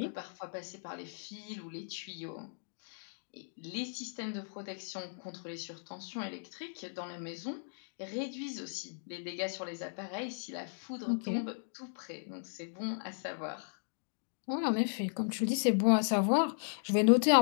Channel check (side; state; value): right; silent; digital silence